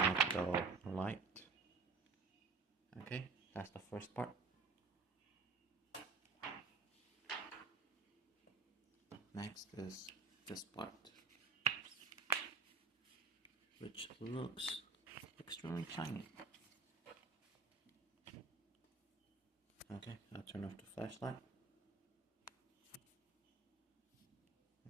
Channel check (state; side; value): quieter; left; 4.4 dB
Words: the light. Okay, that's the first part. Next is this part, which looks extremely shiny. Okay, I'll turn off the flashlight.